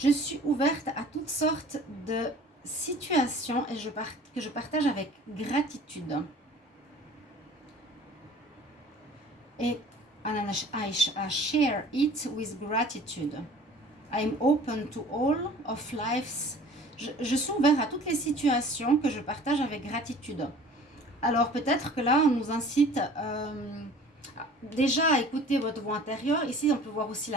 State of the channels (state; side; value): normal; both; correlation 0.47